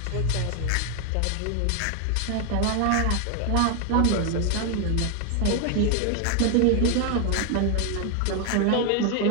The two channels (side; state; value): both; different; correlation 0.00